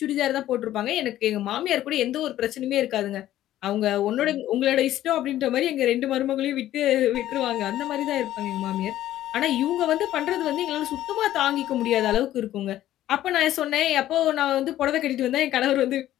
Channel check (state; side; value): quieter; right; 13.3 dB